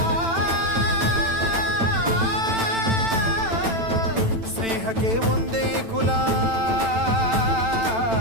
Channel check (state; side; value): late; left; 9.0 ms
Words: ಸ್ನೇಹಕ್ಕೆ ಒಂದೇ ಕುಲ.